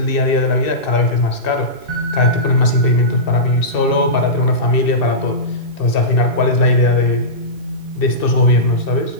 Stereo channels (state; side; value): late; right; 2.6 ms